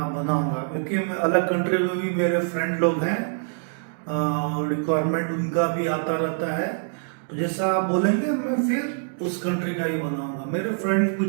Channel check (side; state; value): left; silent; digital silence